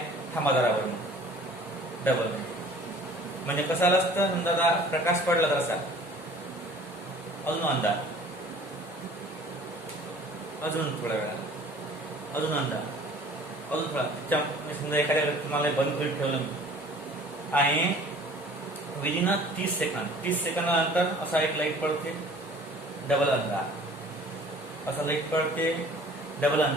थांबा जरावर, डबल. म्हणजे कसं आलं असतं? समजा आता प्रकाश पडला तर असा अजून अंधार, अजून थोड्या वेळा अजून अंधार, अजून थोडा. समजा एखाद्या तुम्हाला बंद करून ठेवलं मी आणि विदिन 30 सेकंदानंतर असा एक लाईट पडते, डबल अंधार, असा लाईट पडते, डबल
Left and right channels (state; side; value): normal; both; correlation 0.49